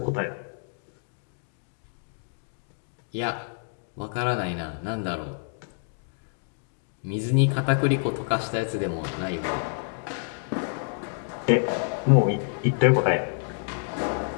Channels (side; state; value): right; silent; digital silence